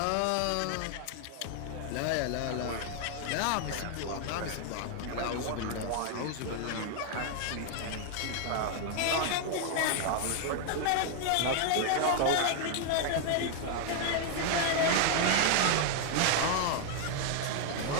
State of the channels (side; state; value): both; different; correlation 0.00